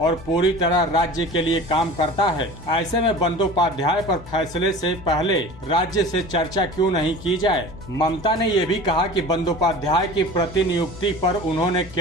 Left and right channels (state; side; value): noise; left; hum, 17 dB below the sound